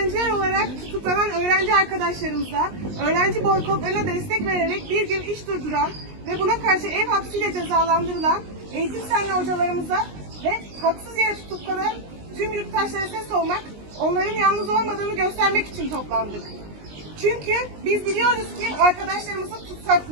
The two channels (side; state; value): left; late; 19 ms